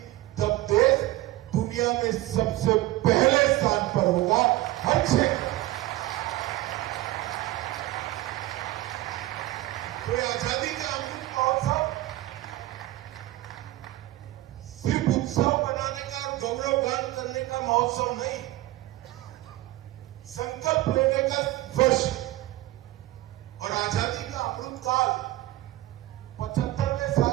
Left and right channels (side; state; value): left; quieter; 17.1 dB